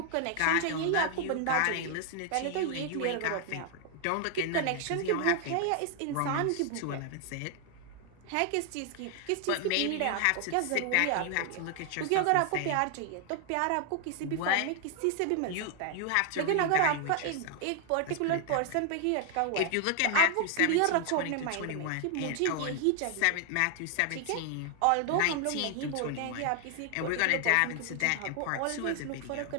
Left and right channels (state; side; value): different; both; correlation 0.00